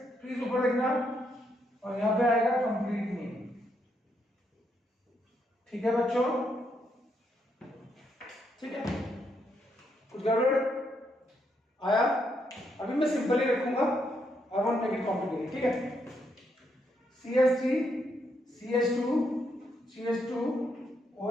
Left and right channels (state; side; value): normal; both; correlation 0.77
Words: प्लीज ऊपर देखना, और यहां पे आएगा कंप्लीट मीनिंग। ठीक है बच्चों, ठीक है, कुछ गड़बड़ आया? अभी मैं सिंपल ही रखूंगा, I won't make it complicated. ठीक है, CH3 CH2 CH2